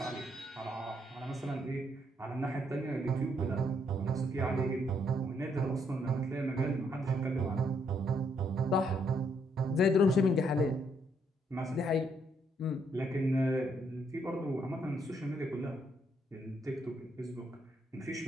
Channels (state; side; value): normal; both; correlation 0.73